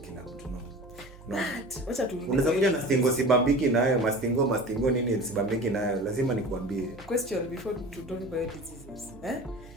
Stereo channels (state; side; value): noise; right; hum, 20 dB below the sound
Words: mtu, no. But wacha tu Unaweza kuja na stingo sibambiki nayo, mastingo nini sibambiki nayo, lazima nikuambie. Question before to talk about diseases.